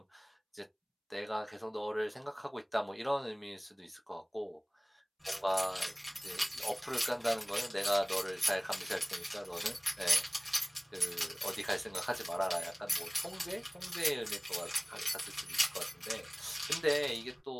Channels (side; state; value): both; identical; correlation 1.00